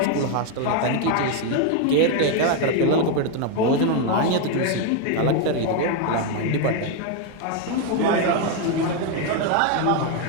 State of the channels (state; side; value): different; both; correlation 0.01